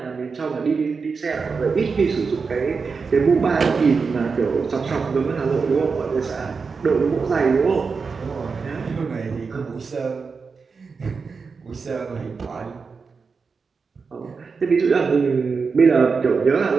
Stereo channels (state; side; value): quieter; left; 5.0 dB